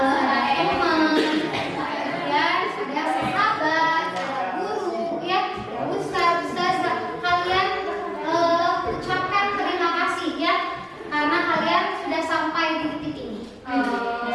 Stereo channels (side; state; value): both; identical; correlation 1.00